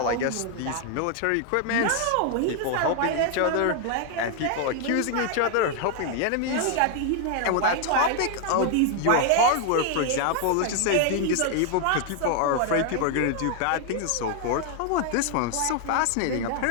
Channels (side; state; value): both; different; correlation 0.00